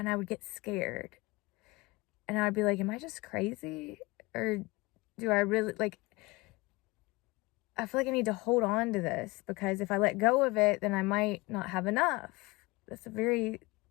I would get scared. And I'd be like, am I just crazy? Or do I really, like, I feel like I need to hold on to this, because if I let go of it, then I might not have enough. That's a very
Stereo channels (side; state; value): right; quieter; 23.3 dB